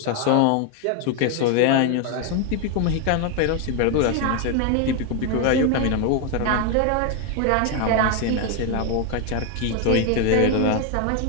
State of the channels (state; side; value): different; both; correlation 0.01